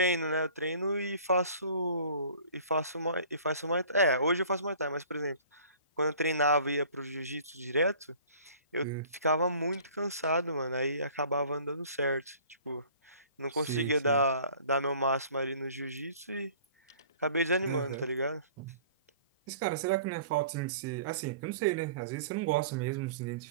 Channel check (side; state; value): both; inverted; correlation -0.48